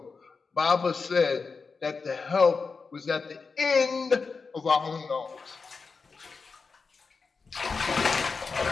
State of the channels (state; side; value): quieter; right; 4.7 dB